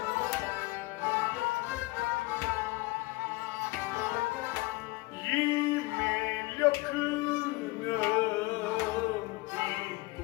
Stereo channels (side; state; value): right; quieter; 22.3 dB